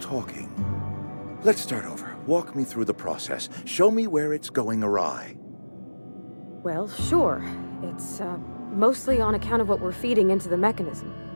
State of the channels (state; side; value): inverted; both; correlation -1.00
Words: Let's start over. Walk me through the process. Show me where it's going awry. Well, sure. It's, mostly on account of what we're feeding into the mechanism.